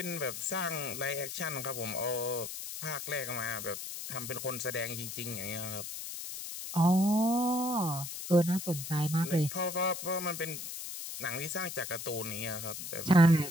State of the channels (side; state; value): left; noise; hiss, 7 dB below the sound